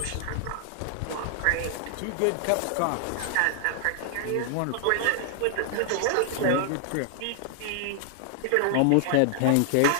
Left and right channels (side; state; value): both; different; correlation 0.00